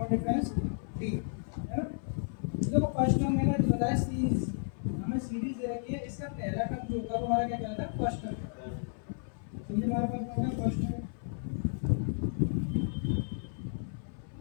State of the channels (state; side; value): silent; right; 56 dB below the other